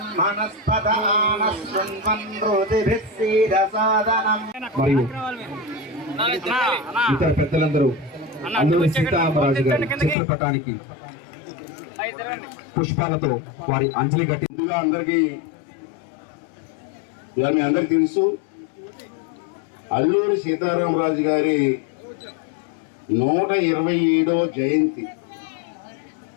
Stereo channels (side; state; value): right; drops out; at 10.2 s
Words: సీదసాదనం. మరియు ఇతర పెద్దలందరూ అల్లూరి సీతారామరాజు గారి చిత్రపటానికి పుష్పాలతో వారి అంజలి ఘటి. అందరికీ మీ అందరికి తెలుసు, అల్లూరి సీతారామరాజు గారి 127వ జయంతి.